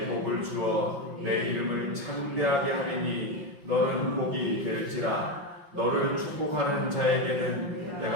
복을 주어 내 이름을 창대하게 하리니 너는 복이 될지라. 너를 축복하는 자에게는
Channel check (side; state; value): left; late; 5.6 ms